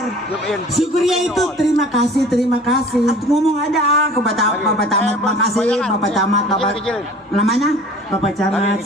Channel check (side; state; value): both; normal; correlation 0.46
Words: Syukria itu terima kasih. Aku ngomong aja ke Bapak Camat, makasih Bapak Camat, Bapak namanya Bapak Camat,